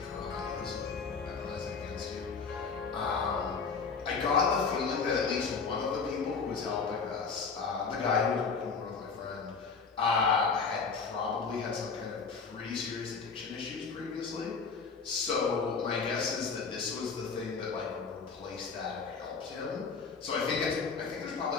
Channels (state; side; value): quieter; right; 5.1 dB